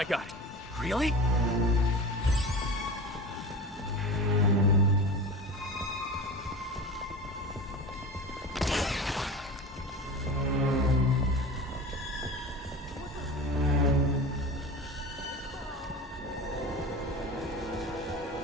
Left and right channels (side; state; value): both; normal; correlation 0.31